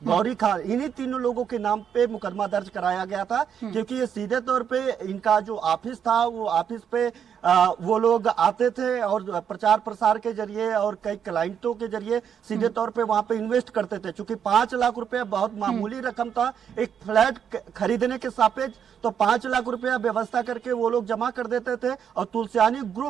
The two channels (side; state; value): left; quieter; 8.1 dB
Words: गौरी खान, इन्हीं तीनों लोगों के नाम पे मुकदमा दर्ज कराया गया था, क्योंकि ये सीधे तौर पे इनका जो ऑफिस था वो ऑफिस पे वो लोग आते थे और प्रचार प्रसार के जरिए और कई क्लाइंटों के जरिए सीधे तौर पे वहां पे इन्वेस्ट करते थे। चूंकि 5 लाख रुपया बहुत मामूली रकम था एक फ्लैट खरीदने के सापेक्ष, तो 5 लाख रुपया व्यवस्था करके वो लोग जमा कर देते थे, और तुलसियानी